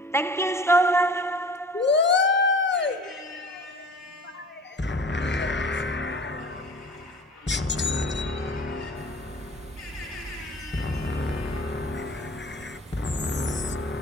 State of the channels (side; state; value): both; normal; correlation 0.43